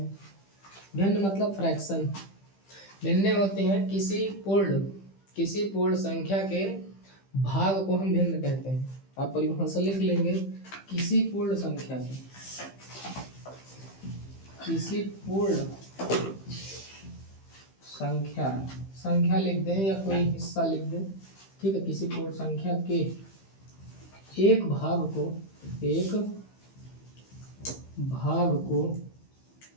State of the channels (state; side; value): late; right; 15 ms